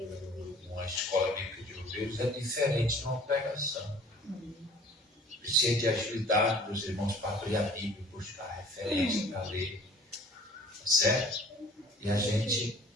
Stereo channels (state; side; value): normal; both; correlation 0.50